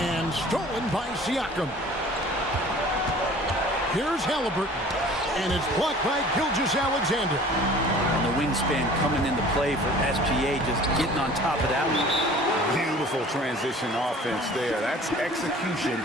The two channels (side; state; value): both; normal; correlation 0.47